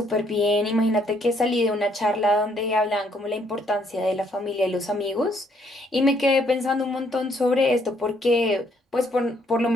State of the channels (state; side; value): normal; both; correlation 0.68